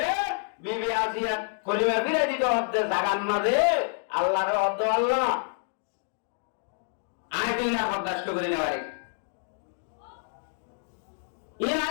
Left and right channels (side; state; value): right; silent; 59 dB below the other